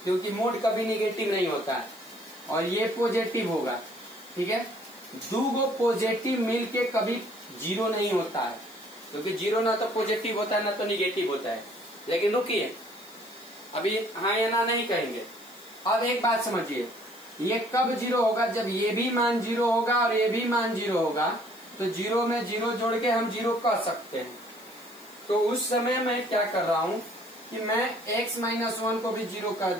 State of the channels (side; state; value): left; noise; hiss, 23 dB below the sound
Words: क्योंकि मोड कभी निगेटिव नहीं होता है, और ये पॉजिटिव होगा। ठीक है, दो गो पॉजिटिव मिलके कभी 0 नहीं होता है, क्योंकि 0 ना तो पॉजिटिव होता है ना तो निगेटिव होता है। लेकिन रुकिए, अभी हाँ या ना नहीं कहेंगे। अब एक बात समझिए, ये कब 0 होगा, जब ये भी मान 0 होगा और ये भी मान 0 होगा, तो 0 में 0 जोड़ के हम 0 कह सकते हैं। तो उस समय मैं क्या कर रहा हूं कि मैं x माइनस 1 को भी 0 कर